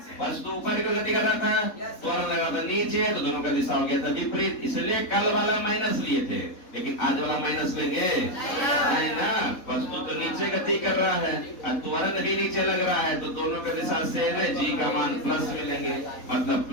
वस्तु ऊपर की गति कर रहा था, त्वरण लगा था नीचे, तो दोनों का दिशा हो गया था विपरीत, इसलिए कल वाला माइनस लिए थे, लेकिन आज वाला माइनस लेंगे नहीं ना। वस्तु तो नीचे गति कर रहा है और त्वरण भी नीचे लग रहा है, तो दोनों का दिशा सेम है, जी का मान प्लस में लेंगे, मतलब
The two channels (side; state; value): right; late; 3.9 ms